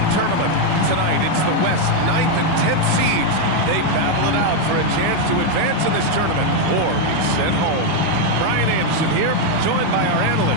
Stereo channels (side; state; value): both; different; correlation 0.01